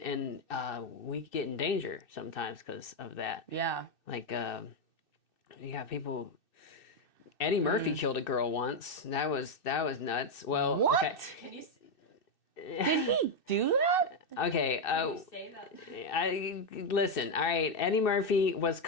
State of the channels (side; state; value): right; late; 2.6 ms